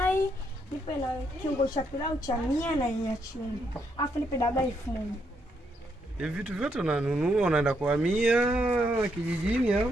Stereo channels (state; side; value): normal; both; correlation 0.76